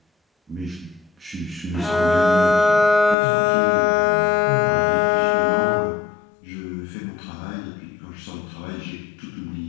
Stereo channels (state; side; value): drops out; right; at 3.2 s